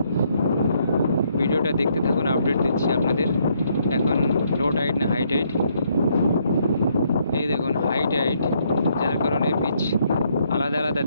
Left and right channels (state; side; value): inverted; both; correlation -0.71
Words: ভিডিওটা দেখতে থাকুন, আপডেট দিচ্ছি আপনাদের। এখন লো টাইড না হাই টাইড, এই দেখুন হাই টাইড, যার কারণে বিচ আলাদা আলাদা